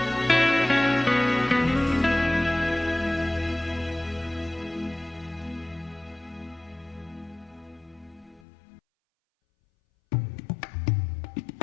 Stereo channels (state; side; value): drops out; right; at 8.4 s